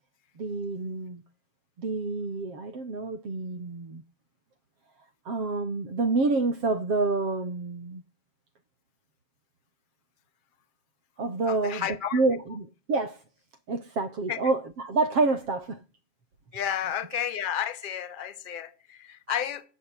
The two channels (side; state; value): left; late; 7.4 ms